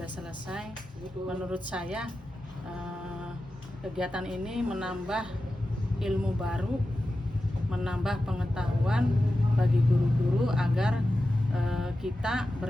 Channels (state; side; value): normal; both; correlation 0.92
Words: selesai. Menurut saya kegiatan ini menambah ilmu baru, menambah pengetahuan bagi guru-guru agar kita